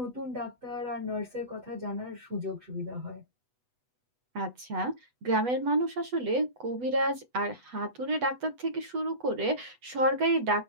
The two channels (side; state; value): left; late; 8.1 ms